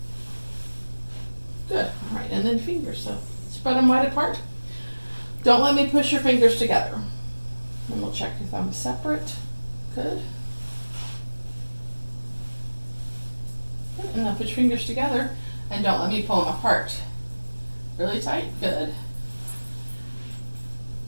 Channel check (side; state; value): both; inverted; correlation -1.00